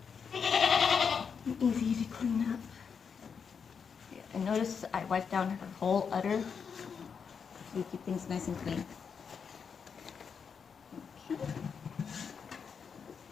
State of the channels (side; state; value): right; quieter; 6.4 dB